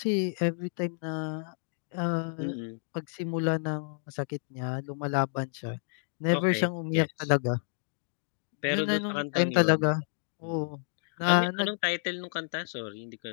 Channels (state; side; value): silent; right; digital silence